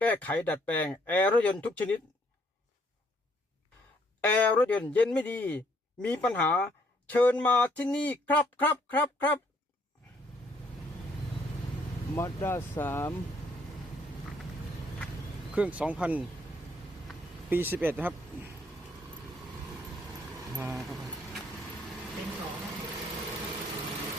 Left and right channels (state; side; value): normal; both; correlation 0.67